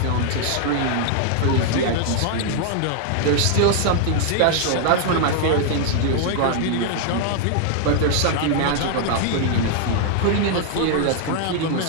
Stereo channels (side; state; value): both; different; correlation 0.00